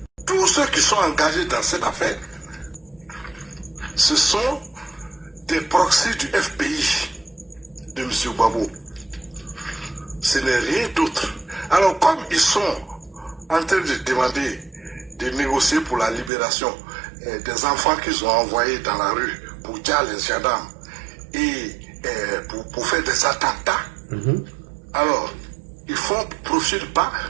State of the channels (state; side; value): drops out; left; at 16.3 s